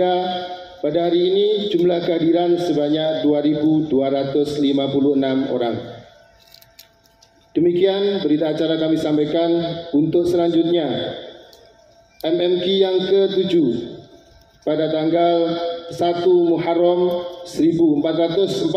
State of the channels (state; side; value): identical; both; correlation 1.00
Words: pada hari ini jumlah kehadiran sebanyak 2.256 orang. Demikian berita acara kami sampaikan. Untuk selanjutnya, MMQ yang ke-7 pada tanggal 1 Muharram